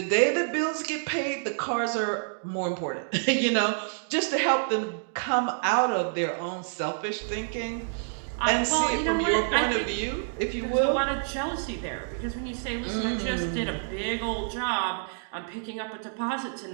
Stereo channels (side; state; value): left; silent; digital silence